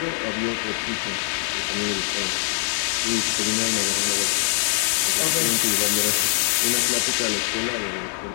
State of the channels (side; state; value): right; silent; 57 dB below the other